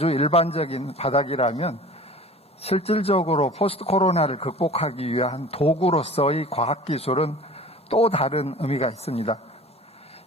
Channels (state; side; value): normal; both; correlation 0.42